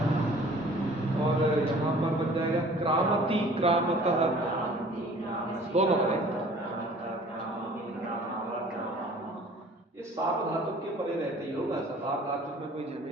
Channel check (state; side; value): normal; both; correlation 0.50